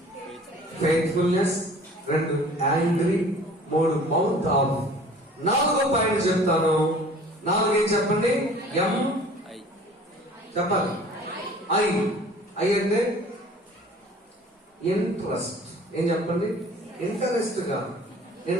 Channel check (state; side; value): normal; both; correlation 0.48